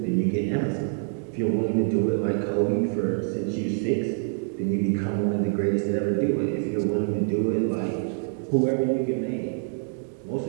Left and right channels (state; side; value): silent; left; 61 dB below the other